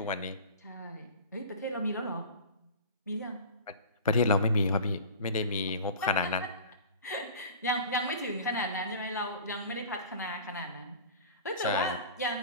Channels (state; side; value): inverted; both; correlation -0.38